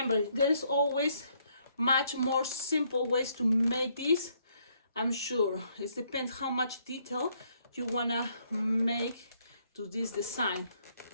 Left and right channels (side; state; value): both; inverted; correlation -0.70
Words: there is always much more simple ways to make this. I'm sure it depends how much detail you wanna make to this design.